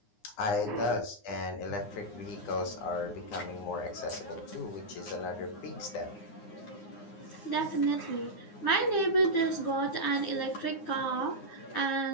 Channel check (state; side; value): late; right; 9.7 ms